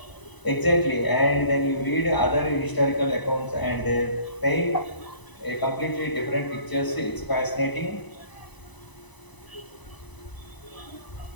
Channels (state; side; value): late; right; 1.0 ms